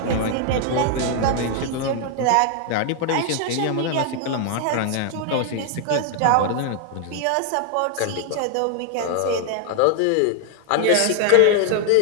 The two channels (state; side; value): different; both; correlation 0.00